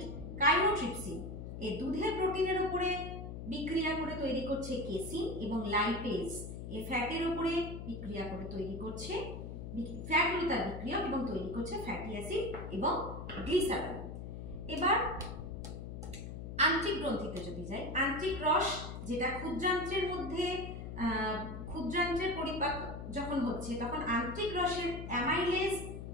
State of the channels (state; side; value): noise; left; hum, 8 dB below the sound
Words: কাইমোট্রিপসিন এই দুধের প্রোটিনের উপরে বিক্রিয়া করে তৈরি করছে কেসিন, এবং লাইপেজ এই ফ্যাটের উপরে বিক্রিয়া করে তৈরি করছে ফ্যাট হলো তার বিক্রিয়ক এবং তৈরি করছে ফ্যাটি অ্যাসিড এবং গ্লিসারল। এবার আন্ত্রিক গ্রন্থিতে যদি যাই, আন্ত্রিক রস যেটা ক্ষুদ্রান্ত্রের মধ্যে, ক্ষুদ্রান্ত্রের পরিপাক যখন হচ্ছে তখন আন্ত্রিক রসের অ্যামাইলেজ